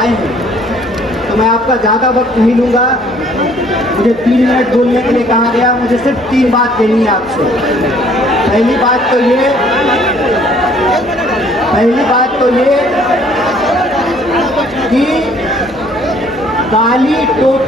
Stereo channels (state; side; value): normal; both; correlation 0.59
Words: हैं, तो मैं आपका ज़्यादा वक्त नहीं लूँगा। मुझे 3 मिनट बोलने के लिए कहा गया। मुझे सिर्फ 3 बात कहनी है आपसे। पहली बात तो ये कि काली